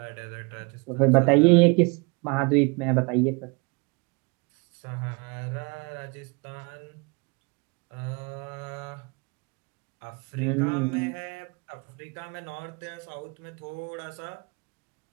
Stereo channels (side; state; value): left; quieter; 30.2 dB